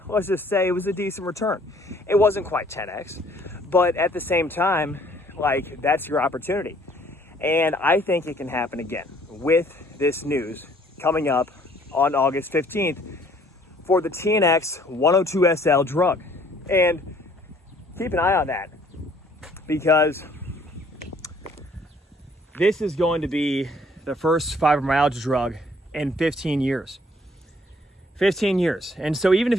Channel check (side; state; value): both; normal; correlation 0.60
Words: let's just say it was a decent return. It wasn't quite 10x, but at the same time, like, that's your opportunity. And I think it can happen again with this news coming up on August 15th for the TNX-102 SL drug. And keep an eye on that, because this is going to be the first fibromyalgia drug in 15 years. 15 years. And so even if